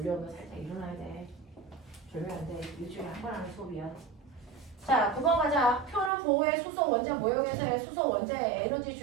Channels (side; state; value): left; drops out; at 6.1 s